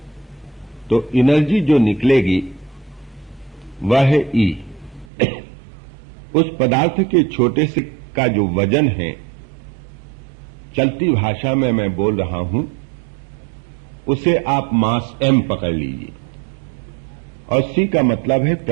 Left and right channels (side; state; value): left; drops out; at 5.1 s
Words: तो एनर्जी जो निकलेगी वह है E। उस पदार्थ के छोटे से का जो वजन है, चलती भाषा में मैं बोल रहा हूं, उसे आप मास m पकड़ लीजिए, और c का मतलब है